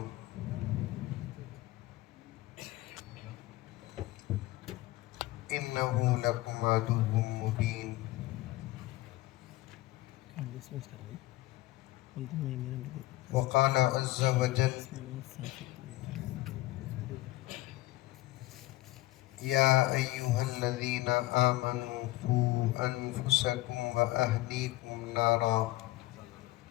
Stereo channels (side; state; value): right; quieter; 17.9 dB